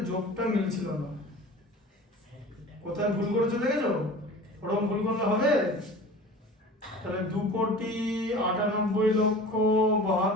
যোগটা মিলছিল না, কোথায় ভুল করেছো দেখেছো? ওরকম ভুল করলে হবে? তাহলে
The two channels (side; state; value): both; normal; correlation 0.39